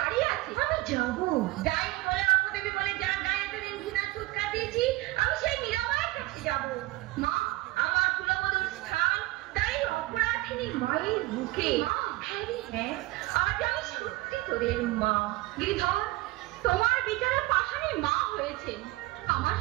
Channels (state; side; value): quieter; left; 20.1 dB